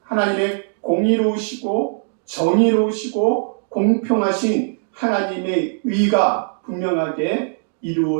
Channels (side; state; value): left; silent; digital silence